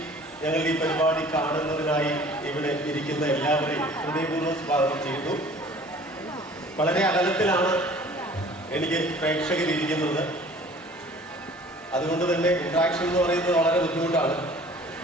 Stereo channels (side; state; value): both; normal; correlation 0.49